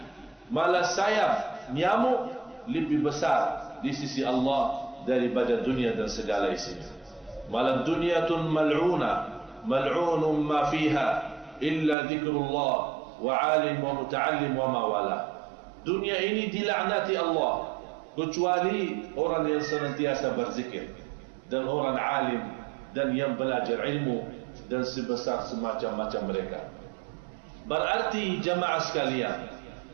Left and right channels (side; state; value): left; drops out; at 12.0 s